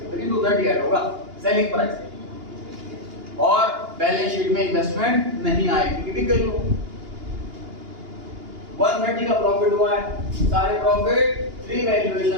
हो, लेकिन 230 ऐड होगा सेलिंग प्राइस, और बैलेंस शीट में इन्वेस्टमेंट नहीं आएगी क्योंकि बिक गई हो। 130 का प्रॉफिट हुआ है, सारे प्रॉफिट रिवैल्यूएशन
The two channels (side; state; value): left; late; 2.8 ms